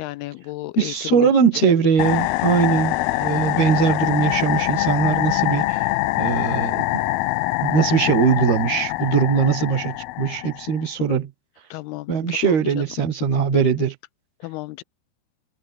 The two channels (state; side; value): late; right; 13 ms